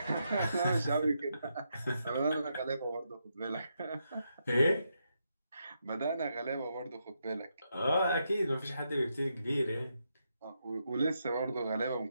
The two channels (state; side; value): inverted; both; correlation -0.82